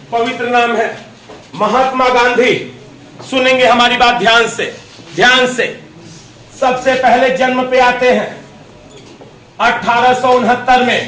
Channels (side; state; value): both; identical; correlation 1.00